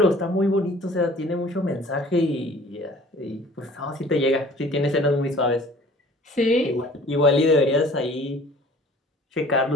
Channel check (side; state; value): both; normal; correlation 0.50